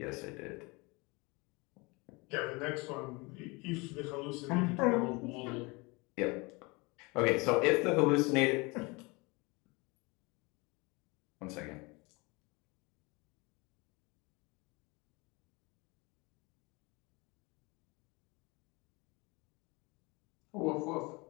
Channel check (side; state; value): right; quieter; 26.5 dB